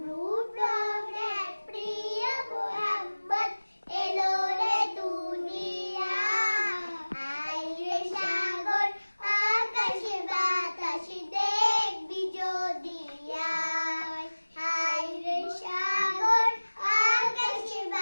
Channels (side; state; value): both; inverted; correlation -1.00